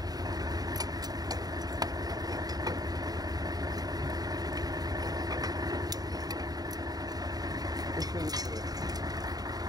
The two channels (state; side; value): late; left; 0.18 ms